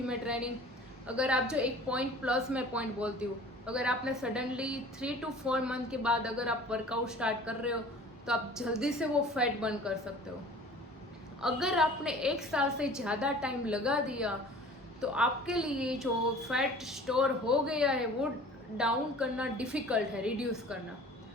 ट्रेनिंग, अगर आप जो एक पॉइंट प्लस मैं पॉइंट बोलती हूँ, अगर आपने सडनली 3 to 4 मंथ के बाद अगर आप वर्कआउट स्टार्ट कर रहे हो तो आप जल्दी से वो फैट बर्न कर सकते हो। अगर आपने 1 साल से ज़्यादा टाइम लगा दिया तो आपके लिए जो फैट स्टोर हो गया है वो डाउन करना डिफ़िकल्ट है, रिड्यूस करना।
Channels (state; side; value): normal; both; correlation 0.45